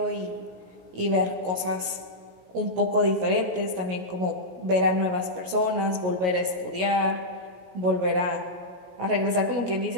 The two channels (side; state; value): left; late; 17 ms